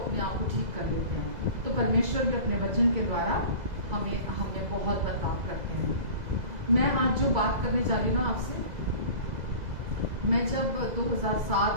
आप को ठीक कर लेते हैं। तो परमेश्वर भी अपने वचन के द्वारा हमें बहुत बदलाव करते हैं। मैं आज जो बात करने जा रही हूँ ना आपसे, मैं जब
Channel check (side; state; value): left; late; 2.0 ms